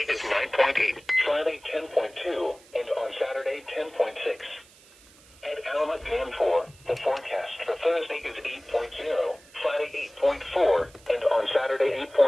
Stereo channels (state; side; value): noise; right; hiss, 25 dB below the sound